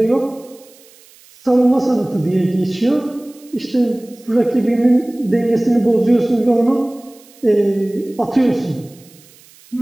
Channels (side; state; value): right; noise; hiss, 26 dB below the sound